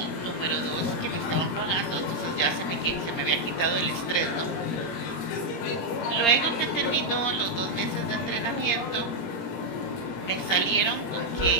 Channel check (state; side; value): late; right; 17 ms